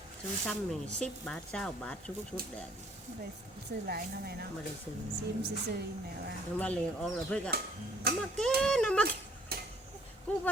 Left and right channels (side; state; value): both; normal; correlation 0.60